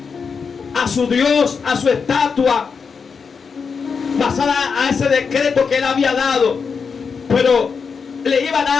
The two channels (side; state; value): right; quieter; 5.7 dB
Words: a su Dios, a su estatua, basada a ese decreto que él había dado, pero le iba a